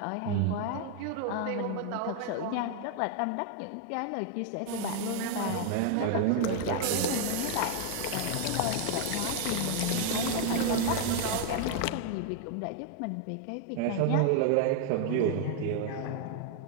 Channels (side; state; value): both; different; correlation 0.00